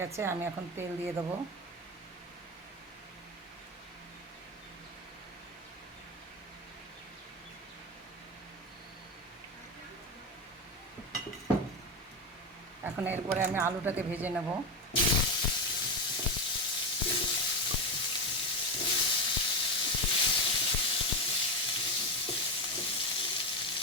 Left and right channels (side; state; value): both; normal; correlation 0.14